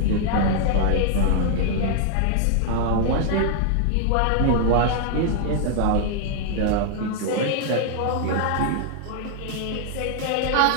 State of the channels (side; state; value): both; different; correlation 0.00